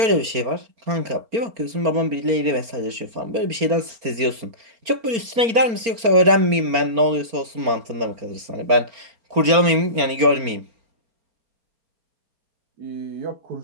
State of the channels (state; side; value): late; left; 4.3 ms